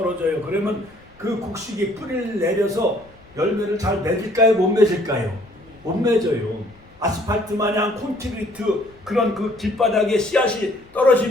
그러면 그 곡식이 뿌리를 내려서 열매를 잘 맺을까요? 못 맺을까요? 못 맺어요. 아스팔트 마냥 콘크리트 그런 그 길바닥에 씨앗이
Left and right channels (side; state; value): left; noise; rumble, 27 dB below the sound